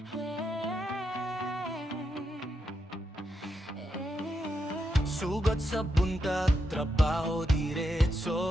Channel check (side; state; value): both; normal; correlation 0.83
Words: Sugat sa buntag, trabaho